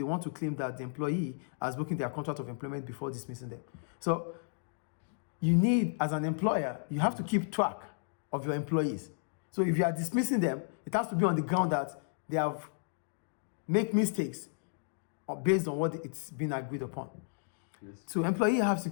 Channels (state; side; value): silent; right; digital silence